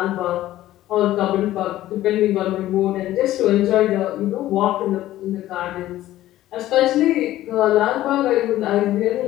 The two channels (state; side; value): quieter; right; 14.5 dB